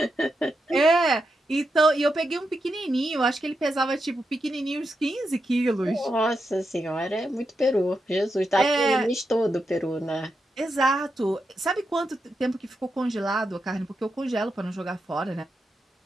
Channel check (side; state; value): both; normal; correlation 0.86